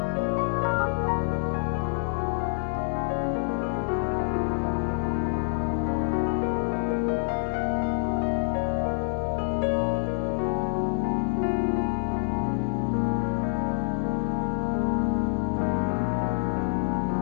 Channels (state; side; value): silent; right; digital silence